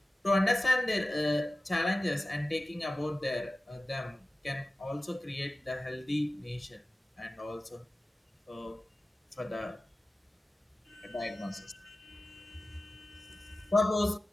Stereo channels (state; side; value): normal; both; correlation 0.96